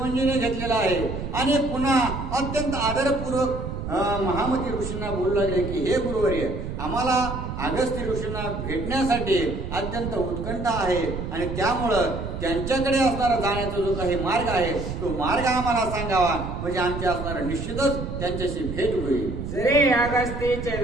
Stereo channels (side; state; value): right; noise; rumble, 6 dB below the sound